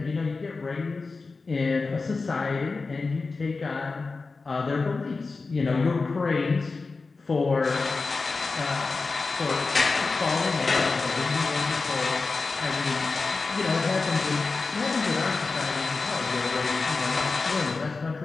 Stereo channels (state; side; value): quieter; right; 4.0 dB